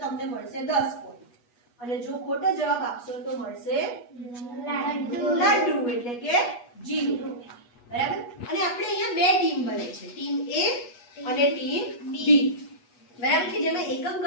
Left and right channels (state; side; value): late; right; 8.3 ms